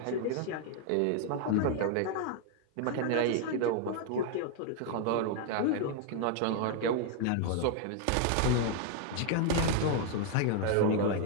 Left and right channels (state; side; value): different; both; correlation 0.00